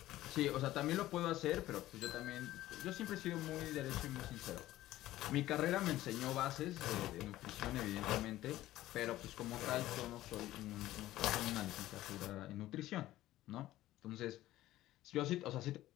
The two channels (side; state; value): right; quieter; 15.2 dB